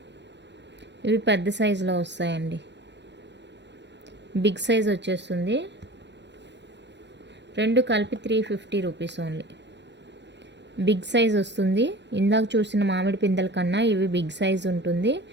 ఇవి పెద్ద సైజులో వస్తాయండి, బిగ్ సైజ్ వచ్చేస్తుంది. రెండు కలిపి 350 రూపీస్ ఓన్లీ. బిగ్ సైజ్ వస్తుంది. ఇందాక చూసిన మామిడి పిందెల కన్నా ఇవి బిగ్ సైజ్ ఉంటుంది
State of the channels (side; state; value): left; late; 0.51 ms